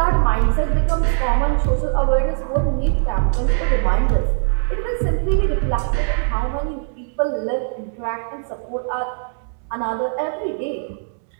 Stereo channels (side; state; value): left; silent; digital silence